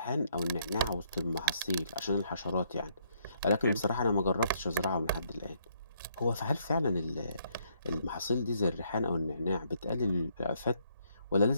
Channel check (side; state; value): both; inverted; correlation -0.71